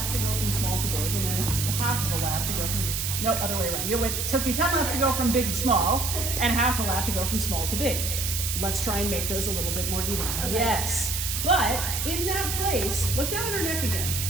to go from small to big, and then half of a lap to go from, no, other way around. It took you 10 laps to go from big to small, and half a lap to go from small to big. Let's try and make those a little bit more even. Okay. Yes, but in that place, look down at her neck again.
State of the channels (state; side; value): noise; right; hiss, 2 dB below the sound